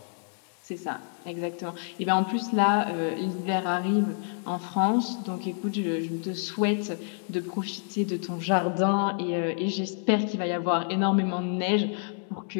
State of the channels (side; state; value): right; silent; 59 dB below the other